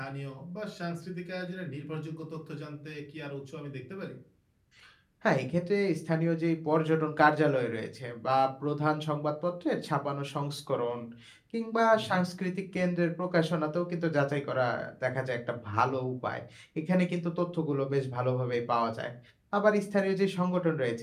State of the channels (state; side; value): identical; both; correlation 1.00